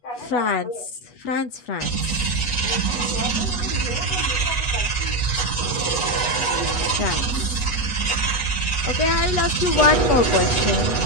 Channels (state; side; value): late; right; 8.2 ms